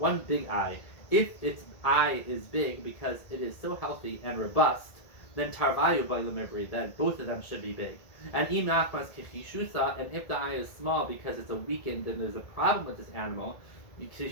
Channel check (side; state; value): right; late; 1.7 ms